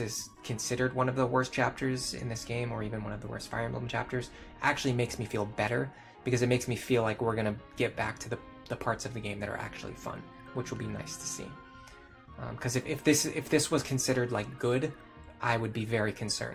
considered one of the worst chapters in this game, or even one of the worst Fire Emblem chapters, actually makes me feel better, because it makes me feel like we're gonna get back to the parts of the game that are actually fun, which will be nice to see. Because if this was considered like good, I would be very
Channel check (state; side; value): identical; both; correlation 1.00